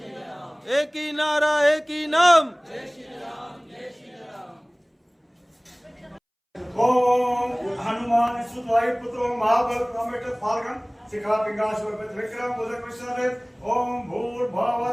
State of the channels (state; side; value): identical; both; correlation 1.00